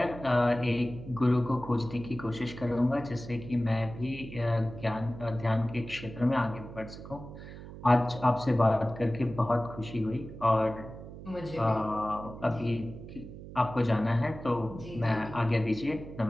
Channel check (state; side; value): noise; right; hum, 13 dB below the sound